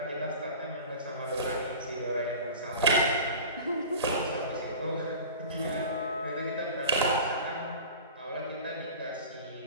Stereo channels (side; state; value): both; inverted; correlation -0.37